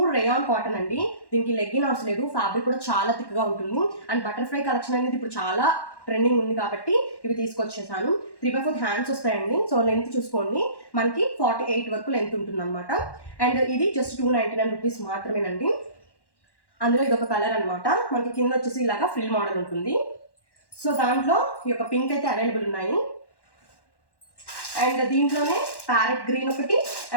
రేయాన్ కాటన్ అండి. దీనికి లెగ్గిన్ అవసరం లేదు. ఫ్యాబ్రిక్ కూడా చాలా థిక్గా ఉంటుంది. అండ్ బటర్ఫ్లై కలెక్షన్ అనేది ఇప్పుడు చాలా ట్రెండింగ్ ఉంది కాబట్టి ఇవి తీసుకొచ్చేసాను. 3/4 హ్యాండ్స్ వస్తాయండి. సో లెంత్ చూసుకోండి, మనకి 48 వరకు లెంత్ ఉంటుంది అనమాట. అండ్ ఇది జస్ట్ 299 రూపీస్ మాత్రమేనండి. అందులో ఇది ఒక కలర్ అనమాట. మనకి కింద వచ్చేసి ఇలాగా ఫ్రిల్ మోడల్ ఉంటుంది. సో దాంట్లో ఈ యొక్క పింక్ అయితే అవైలబుల్ ఉన్నాయి. అండ్ దీంట్లోనే ప్యారెట్ గ్రీన్ ఒకటి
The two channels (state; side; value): late; right; 1.1 ms